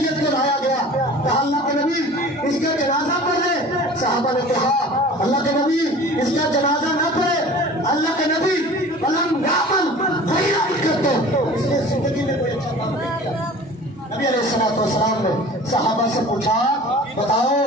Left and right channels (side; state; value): both; normal; correlation 0.42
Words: کو لایا گیا، کہا اللہ کے نبی اس کا جنازہ پڑھ لے۔ صحابہ نے کہا اللہ کے نبی اس کا جنازہ نہ پڑھے، اللہ کے نبی ولم یعمل خیرا کرتے، اس نے زندگی میں کوئی اچھا کام نہیں کیا۔ نبی علیہ السلام نے صحابہ سے پوچھا